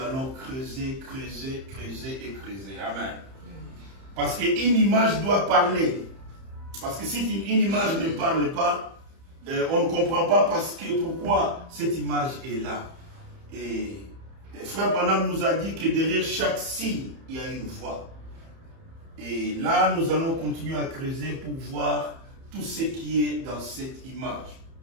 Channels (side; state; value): left; late; 30 ms